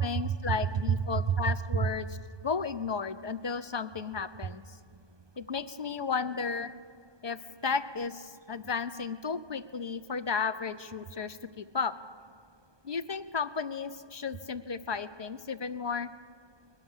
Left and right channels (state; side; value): late; left; 1.2 ms